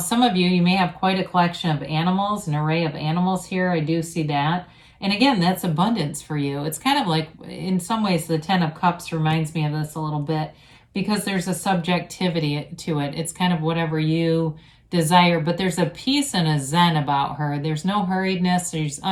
of you may have quite a collection of animals, an array of animals here. I do see that. And again, that's abundance for you. It's kind of like, in some ways, the 10 of Cups reminds me of this a little bit, because there's a subjectivity to it. It's kind of whatever you desire, but there's a peace and a zen about her. There's no hurriedness. She's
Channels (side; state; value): both; identical; correlation 1.00